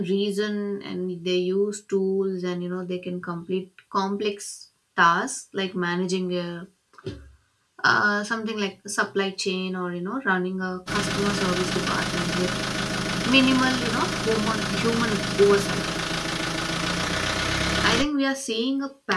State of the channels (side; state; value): both; identical; correlation 1.00